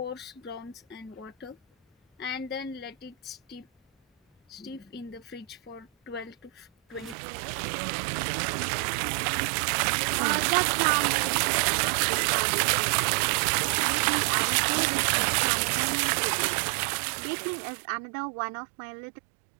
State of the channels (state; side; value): drops out; left; at 7.2 s